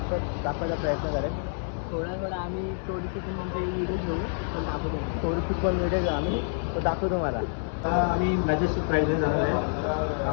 प्रयत्न करेन. थोडा आम्ही थोडीशी म्हणजे व्हिडिओ घेऊ, पण दाखवतो. थोडीशी पण व्हिडिओ घेऊ आम्ही, तो दाखवतो मला. आम्ही मॅजेस्टिक प्राईजने जाणार आहे.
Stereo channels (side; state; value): right; silent; 60 dB below the other